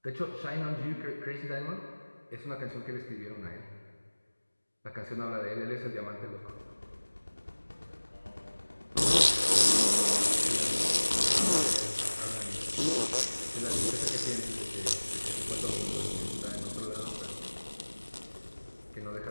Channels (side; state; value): both; inverted; correlation -1.00